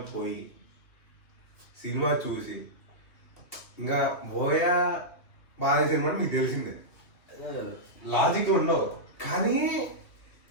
పోయి సినిమా చూసి ఇంకా బోయా బాగా సినిమా మీకు తెలిసిందే, లాజిక్ ఉండవు. కానీ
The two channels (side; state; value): right; late; 2.5 ms